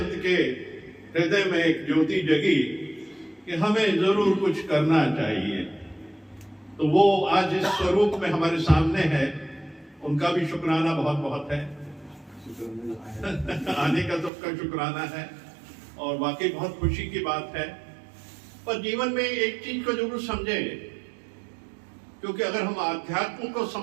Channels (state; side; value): drops out; left; at 14.3 s